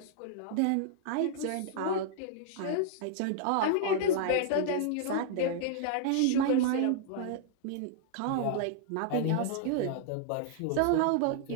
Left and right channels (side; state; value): both; different; correlation -0.01